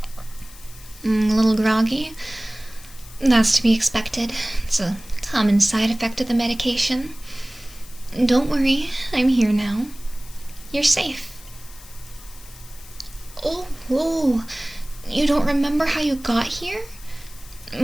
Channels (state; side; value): noise; left; hiss, 20 dB below the sound